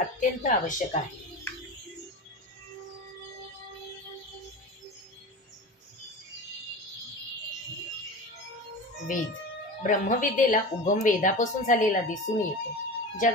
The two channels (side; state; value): both; normal; correlation 0.30